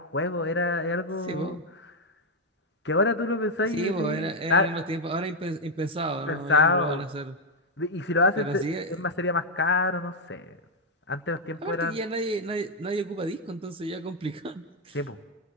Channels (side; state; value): both; normal; correlation 0.02